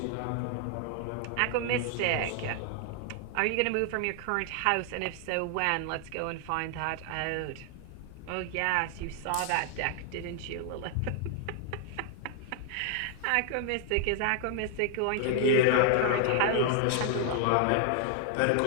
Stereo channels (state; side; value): different; both; correlation 0.00